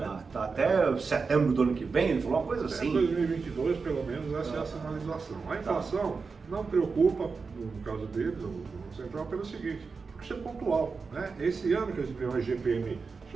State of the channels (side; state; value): left; quieter; 4.8 dB